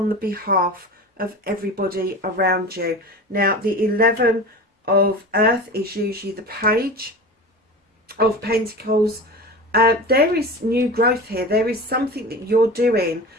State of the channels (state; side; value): normal; both; correlation 0.32